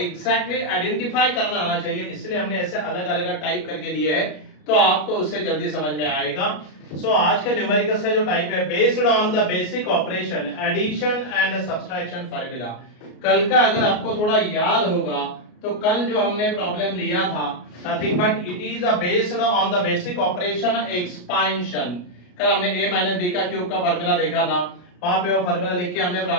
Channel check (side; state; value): right; late; 33 ms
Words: आइडेंटिफाई करना आना चाहिए, इसलिए हमने ऐसे अलग अलग टाइप करके लिए है तो आपको उससे जल्दी समझ में आएगा। सो आज का न्यूमेरिकल का जो टाइप है based on the basic operation addition and subtraction formula. कल का अगर आपको थोड़ा याद होगा तो कल जो हमने प्रॉब्लम लिया था nothing but it is based on the basic operation expansion. कल हमने a माइनस बी का क्यूब का फार्मूला देखा था, वहां पे वो फार्मूला लिख के हमने